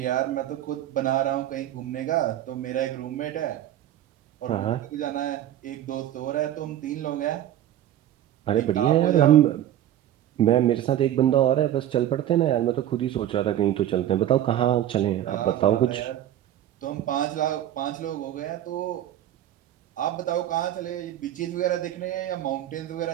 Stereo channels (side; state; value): left; quieter; 12.0 dB